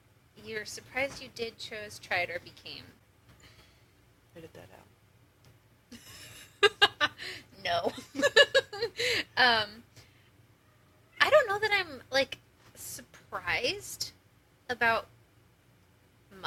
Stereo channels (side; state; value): both; identical; correlation 1.00